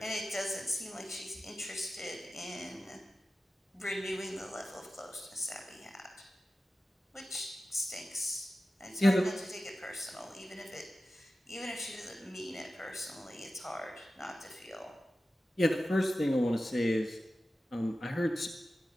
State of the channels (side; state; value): both; normal; correlation 0.94